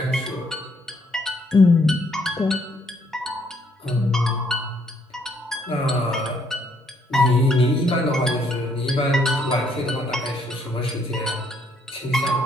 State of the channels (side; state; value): both; normal; correlation 0.69